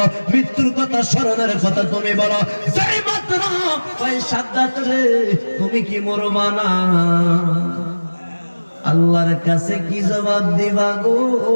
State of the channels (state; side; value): inverted; both; correlation -1.00